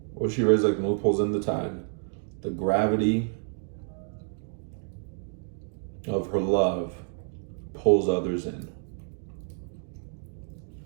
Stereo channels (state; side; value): silent; left; 57 dB below the other